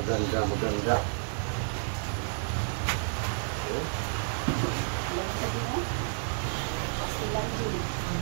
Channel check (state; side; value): silent; left; digital silence